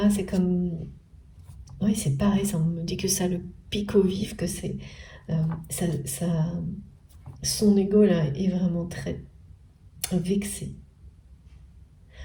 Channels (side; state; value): both; identical; correlation 1.00